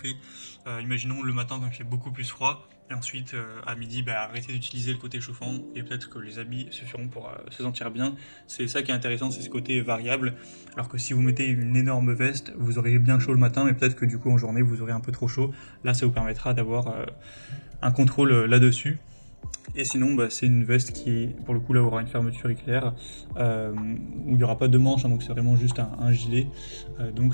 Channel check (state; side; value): inverted; both; correlation -1.00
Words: Imaginons le matin quand il fait beaucoup plus froid, et ensuite à midi arrêter d'utiliser le côté chauffant, et peut-être que les habits suffiront pour se sentir bien. C'est ça qui est intéressant, c'est ce côté variable, alors que si vous mettez une énorme veste, vous aurez bien chaud le matin, mais peut-être que du coup en journée vous aurez un peu trop chaud. Là ça vous permettra d'avoir un contrôle là-dessus. Et sinon c'est une veste qui pour le coup là aura une fermeture éclair, où il n'y aura pas de manche, donc c'est vraiment juste un gilet, donc